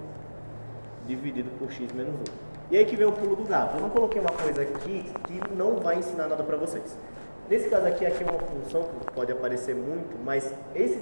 dividido por x menos 1. E aí que vem o pulo do gato. Eu não coloquei uma coisa aqui que não vai ensinar nada para vocês. Nesse caso aqui é uma função que pode aparecer muito, mas esse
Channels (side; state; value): both; inverted; correlation -1.00